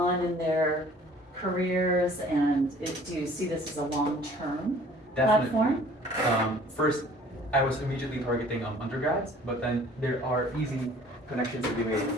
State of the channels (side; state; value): both; normal; correlation 0.52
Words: in their careers, and do you see this as a long-term Definitely. platform? First, I was immediately targeting undergrads, but then there are easy connections to be made